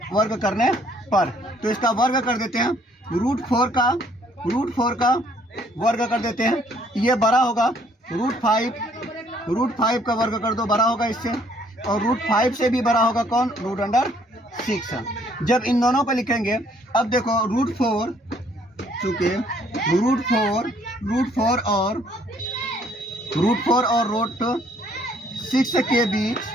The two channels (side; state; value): both; normal; correlation 0.64